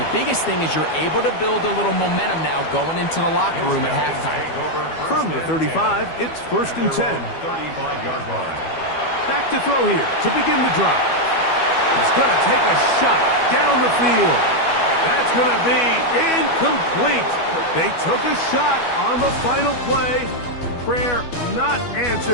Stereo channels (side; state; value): right; late; 12 ms